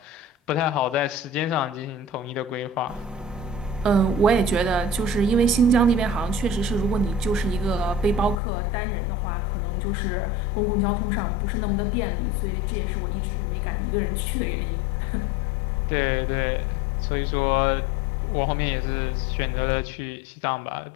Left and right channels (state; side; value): drops out; right; at 8.3 s